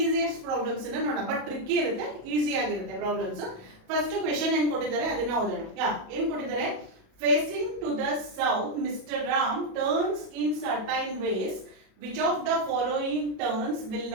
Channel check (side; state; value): left; late; 37 ms